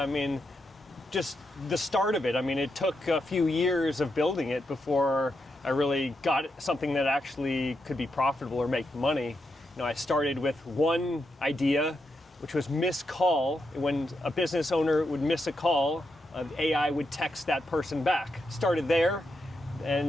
mean, just the start of it. I mean, it took a few years of building it before I really got something that actually could be profitable or make money. You know, I started with one idea, which was miss call. When a business owner would miss a call, AI would text that person back. Started there,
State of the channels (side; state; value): both; normal; correlation 0.84